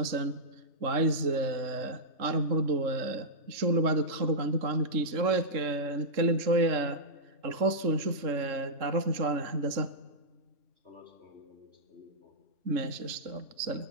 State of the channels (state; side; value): late; left; 3.6 ms